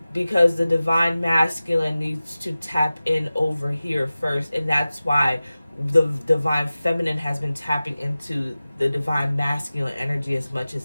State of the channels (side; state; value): both; inverted; correlation -0.96